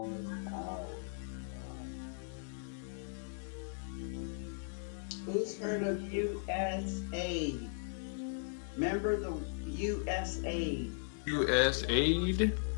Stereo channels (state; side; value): silent; right; digital silence